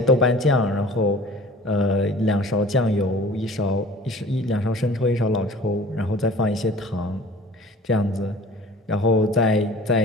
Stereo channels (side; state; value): both; normal; correlation 0.45